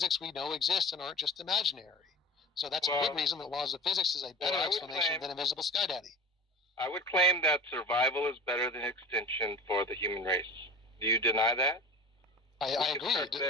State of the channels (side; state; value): both; normal; correlation 0.36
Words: we know exist and aren't just imaginary. So that's a good reason that laws of physics is a better explanation than invisible Sky Daddy. I would claim that survival is better than extinction for the human race. Do you deny that? I agree.